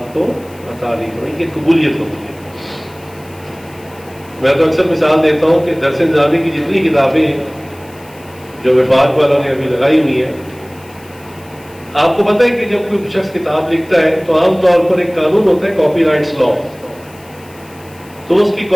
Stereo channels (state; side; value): noise; left; hiss, 25 dB below the sound